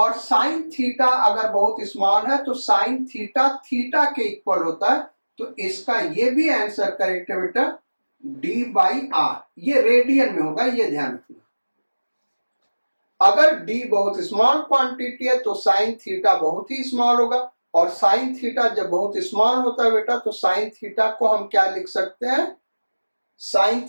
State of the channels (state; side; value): inverted; both; correlation -1.00